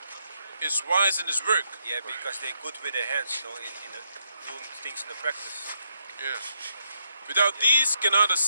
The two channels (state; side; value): inverted; both; correlation -0.78